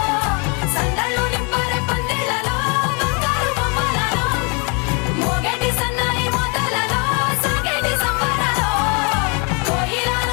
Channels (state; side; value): quieter; right; 32.5 dB